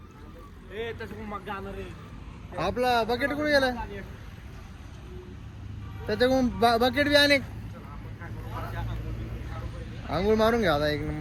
तसं मग जाणार रे. आपला बकेट कुठे गेला, त्याच्याकडून बकेट बी अनेक. आंघोळ मारून घ्या आता एक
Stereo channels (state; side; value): identical; both; correlation 1.00